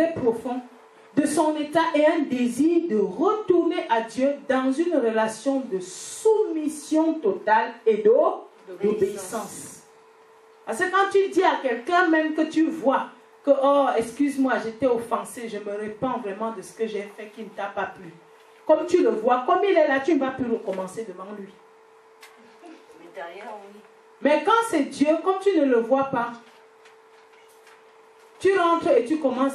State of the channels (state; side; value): identical; both; correlation 1.00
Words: profond de son état et un désir de retourner à Dieu dans une relation de soumission totale et d'obéissance. Parce que quand tu dis à quelqu'un même que tu vois que, oh, excuse-moi, j'étais offensé, je me répands vraiment de ce que j'ai fait qui ne t'a pas plu. Comme tu le vois, comme il est là, tu ne vas plus recommencer devant lui. Mais derrière, oui. Mais quand c'est Dieu, comme tu ne le vois pas, tu rentres et tu